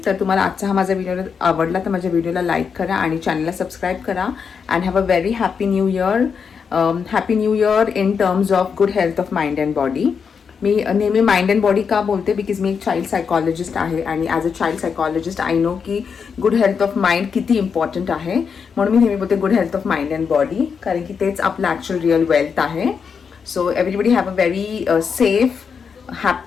तर तुम्हाला आजचा हा माझा व्हिडिओ आवडला तर माझ्या व्हिडिओला लाईक करा आणि चॅनलला सबस्क्राईब करा. And have a very happy new year. Happy new year in terms of good health of mind and body. मी नेहमी माइंड अँड बॉडी का बोलते, बिकॉज मी एक चाइल्ड सायकॉलॉजिस्ट आहे आणि as a child psychologist I know की good health of mind किती important आहे. म्हणून मी नेहमी बोलते good health of mind and body, कारण की तेच आपलं ॲक्च्युअल रिअल वेल्थ आहे. So everybody have a very safe,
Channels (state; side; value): quieter; right; 6.2 dB